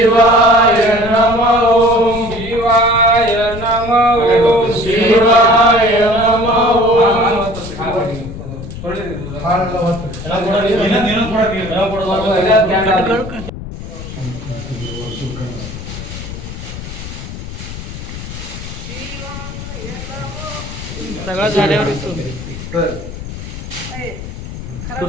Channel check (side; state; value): left; noise; rumble, 10 dB below the sound